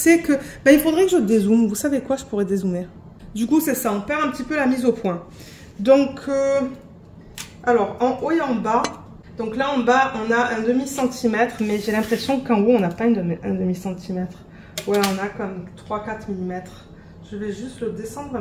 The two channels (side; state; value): both; identical; correlation 1.00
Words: que... ben, il faudrait que je dézoome. Vous savez quoi, je pourrais dézoomer. Du coup, c'est ça, on perd un petit peu la mise au point. Donc, alors, en haut et en bas. Donc là, en bas, on a un demi-centimètre, mais j'ai l'impression qu'en haut, on n'a pas un demi-centimètre. Ouais, on a comme 3-4 mm. Je vais juste le descendre